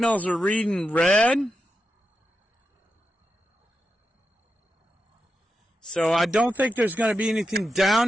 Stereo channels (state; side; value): normal; both; correlation 0.88